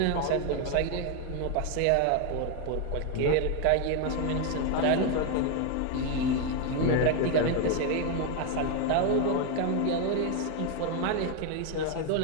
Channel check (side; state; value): both; different; correlation 0.01